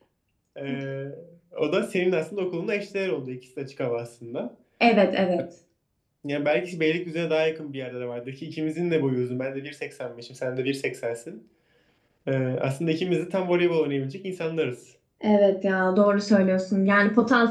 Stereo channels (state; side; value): identical; both; correlation 1.00